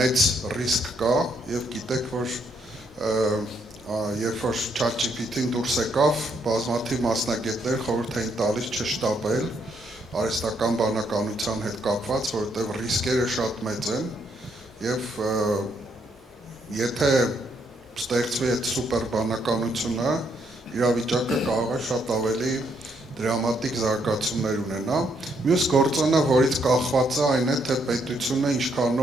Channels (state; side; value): normal; both; correlation 0.73